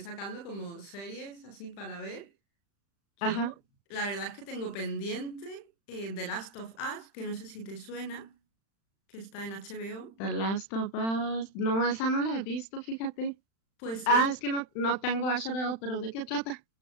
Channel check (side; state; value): right; late; 35 ms